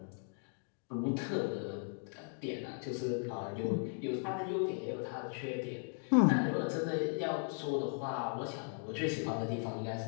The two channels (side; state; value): right; silent; 53 dB below the other